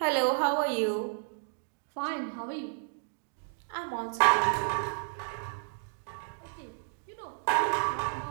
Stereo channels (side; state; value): left; silent; digital silence